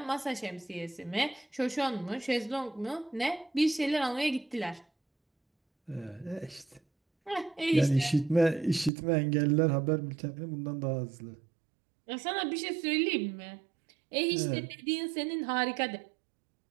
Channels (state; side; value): drops out; left; at 8.9 s